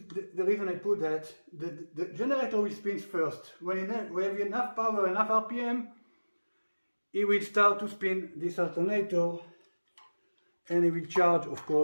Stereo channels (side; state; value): both; inverted; correlation -1.00